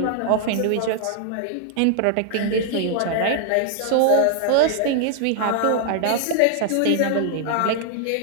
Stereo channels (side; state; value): both; different; correlation 0.00